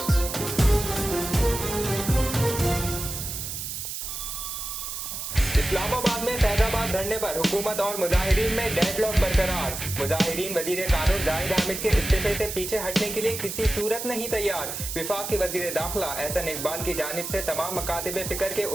इस्लामाबाद में फैजाबाद धरने पर हुकूमत और मुजाहिरीन में डेडलॉक बरकरार। मुजाहिरीन वजीर कानून जाहिद हामिद के इस्तीफे से पीछे हटने के लिए किसी सूरत नहीं तैयार। विफाक के वजीर दाखिला एहसन इकबाल की जानिब से तमाम मकातिब फिक्र के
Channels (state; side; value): noise; right; hiss, 6 dB below the sound